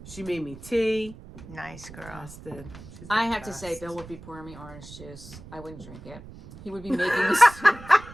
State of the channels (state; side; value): noise; right; rumble, 16 dB below the sound